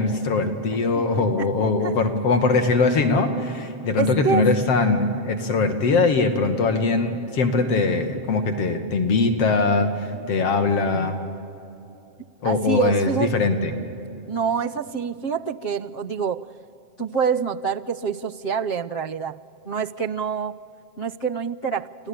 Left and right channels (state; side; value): late; right; 7.6 ms